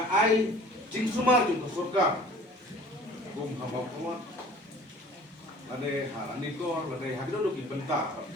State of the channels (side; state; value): both; normal; correlation 0.48